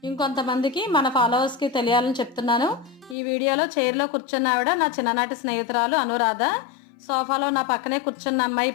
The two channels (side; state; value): right; drops out; at 3.2 s